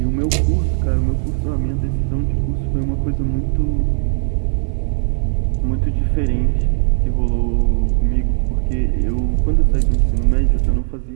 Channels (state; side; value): silent; left; 63 dB below the other